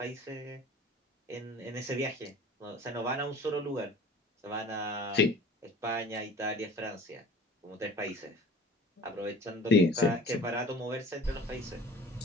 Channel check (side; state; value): both; normal; correlation 0.44